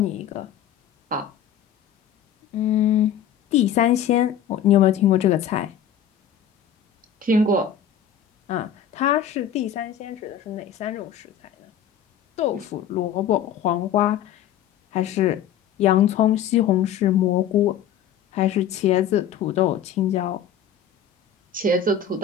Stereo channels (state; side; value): quieter; right; 8.9 dB